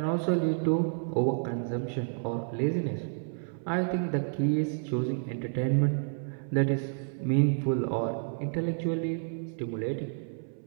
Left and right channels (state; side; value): silent; left; 58 dB below the other